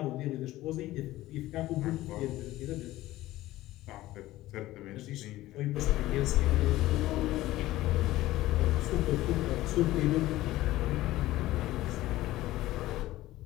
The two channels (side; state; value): right; quieter; 16.4 dB